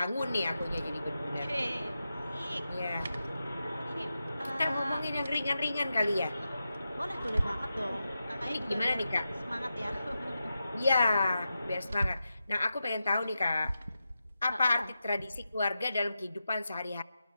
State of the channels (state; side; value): inverted; both; correlation -0.90